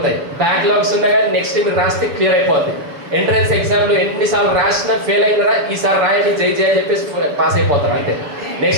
బ్యాక్లాగ్స్ ఉన్నా కానీ నెక్స్ట్ మీరు రాస్తే క్లియర్ అయిపోద్ది. ఎంట్రన్స్ ఎగ్జామ్లో ఎన్నిసార్లు రాసినా ఫెయిల్ అయినరా, ఈసారి రాయండి జై జై అని చెప్పేసి పాస్ అయిపోతారు. అంటే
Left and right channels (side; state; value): left; late; 7.0 ms